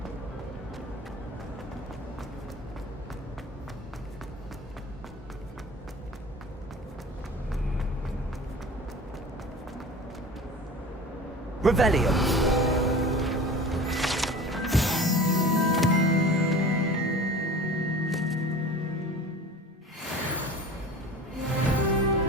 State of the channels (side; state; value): both; normal; correlation 0.39